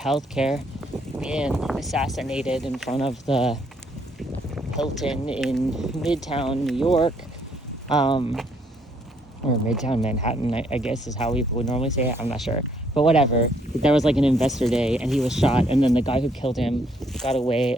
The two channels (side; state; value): both; normal; correlation 0.69